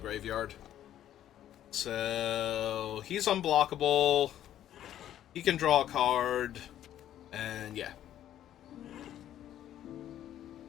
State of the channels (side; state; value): right; quieter; 11.6 dB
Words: So he's unblockable. He can draw a card. And yeah.